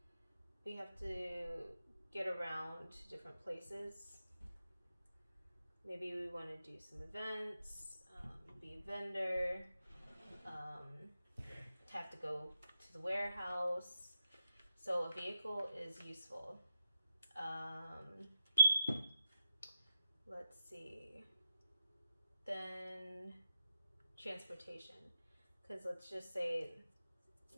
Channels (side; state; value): both; inverted; correlation -0.88